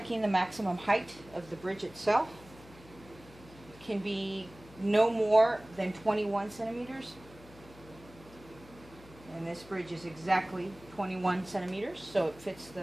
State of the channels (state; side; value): noise; left; hum, 21 dB below the sound